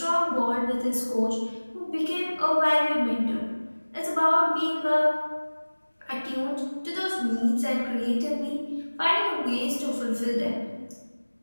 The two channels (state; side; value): inverted; both; correlation -1.00